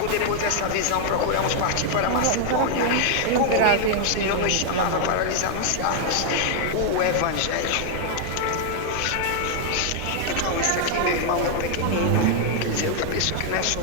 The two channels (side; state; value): both; different; correlation -0.01